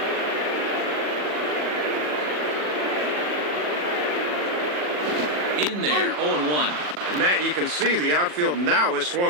In there, 0-1. And Matt, you can see the outfield now is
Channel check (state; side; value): late; left; 40 ms